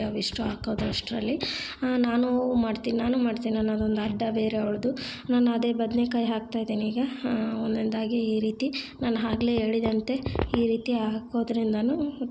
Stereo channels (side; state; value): both; identical; correlation 1.00